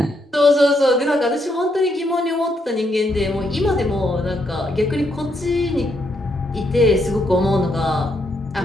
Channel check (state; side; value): normal; both; correlation 0.77